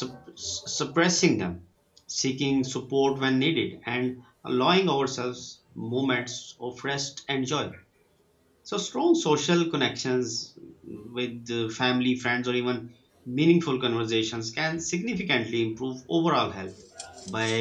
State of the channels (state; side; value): identical; both; correlation 1.00